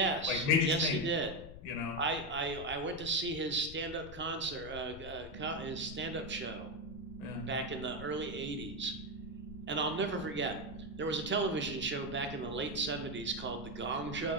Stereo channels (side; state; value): left; noise; rumble, 13 dB below the sound